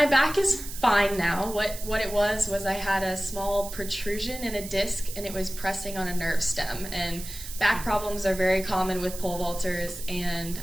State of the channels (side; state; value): right; noise; hiss, 11 dB below the sound